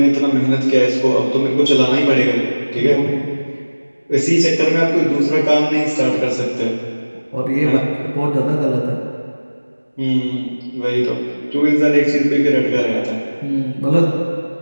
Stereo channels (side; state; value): both; inverted; correlation -1.00